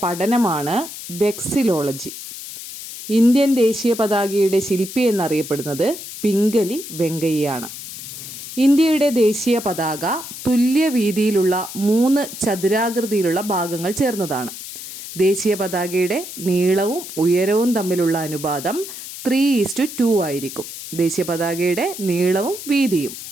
പഠനമാണ് വെക്സിലോളജി. ഇന്ത്യൻ ദേശീയ പതാകയുടെ ശില്പി എന്നറിയപ്പെടുന്നത് പിംഗലി വെങ്കയ്യാണ്. ഇന്ത്യയുടെ ദേശീയ പതാക തുല്യ വീതിയിലുള്ള 3 ചതുരാകൃതിയിലുള്ള ഭാഗങ്ങൾ ചേർന്നതാണ്. ദേശീയ പതാകയുടെ നീളവും ഉയരവും തമ്മിലുള്ള അനുപാതം 3:2 ആയിരിക്കും. ദേശീയ പതാകയുടെ നീളവും വീതിയും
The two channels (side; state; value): left; noise; hiss, 11 dB below the sound